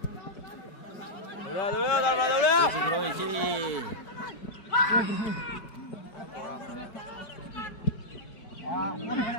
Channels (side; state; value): right; late; 5.1 ms